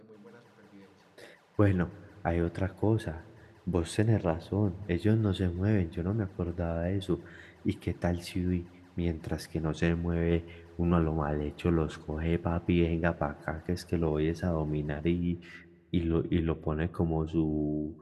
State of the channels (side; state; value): both; identical; correlation 1.00